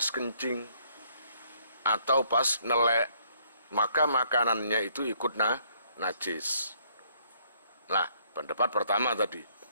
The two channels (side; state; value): both; inverted; correlation -0.66